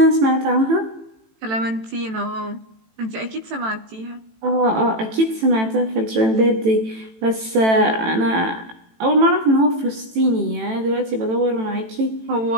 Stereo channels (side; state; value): left; late; 18 ms